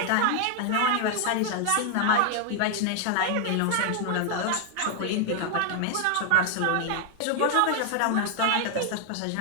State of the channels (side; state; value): both; different; correlation 0.00